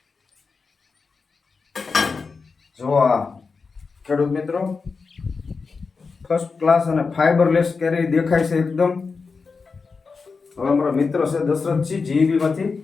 જો આ ખેડૂત મિત્રો ફર્સ્ટ ક્લાસ અને ફાઈબરલેસ કેરી દેખાય છે એકદમ. હવે અમારો મિત્ર છે દશરથજી જીબી માંથી,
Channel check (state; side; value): quieter; right; 4.7 dB